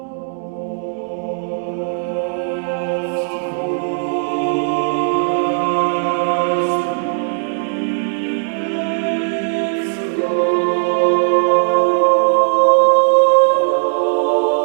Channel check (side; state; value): left; silent; digital silence